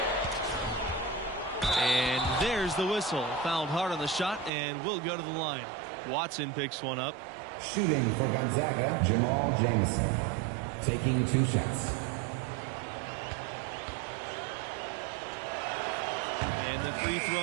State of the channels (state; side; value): drops out; left; at 4.5 s